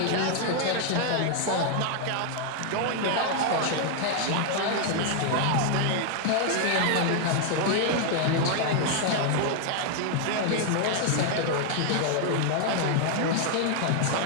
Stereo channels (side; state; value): both; different; correlation 0.00